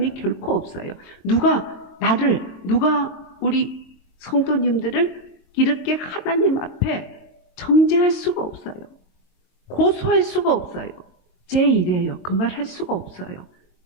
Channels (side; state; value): right; late; 22 ms